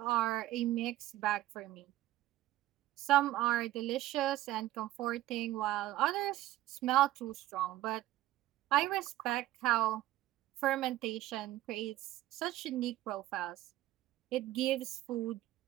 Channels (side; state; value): left; quieter; 15.1 dB